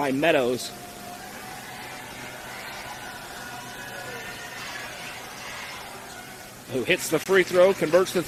Meadows. Who hits the free throw, converts the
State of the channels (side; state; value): both; identical; correlation 1.00